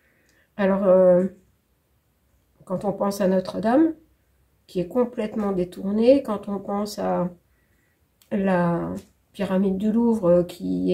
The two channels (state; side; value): identical; both; correlation 1.00